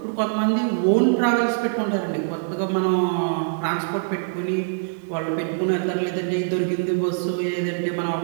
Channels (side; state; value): left; silent; digital silence